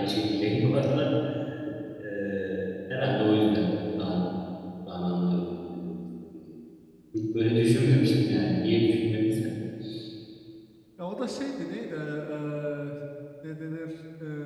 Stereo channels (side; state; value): both; identical; correlation 1.00